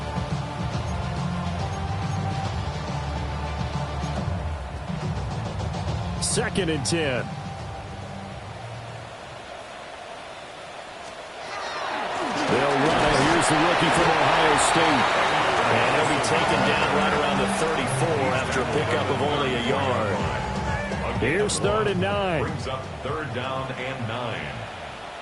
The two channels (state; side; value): identical; both; correlation 1.00